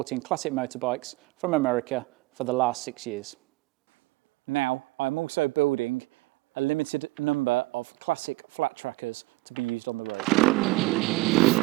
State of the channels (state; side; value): quieter; left; 21.4 dB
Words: classic motorbikes from America for the last 6 years. Now, I'm also building a limited number of classic flat trackers to be used on the road.